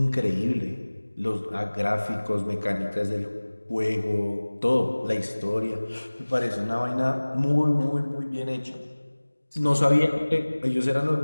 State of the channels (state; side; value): inverted; both; correlation -1.00